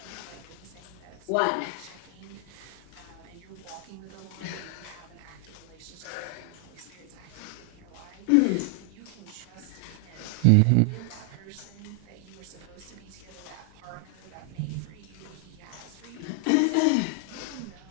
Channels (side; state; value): both; different; correlation 0.00